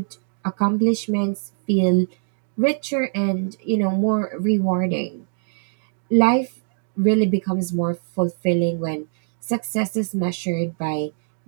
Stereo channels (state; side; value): silent; left; digital silence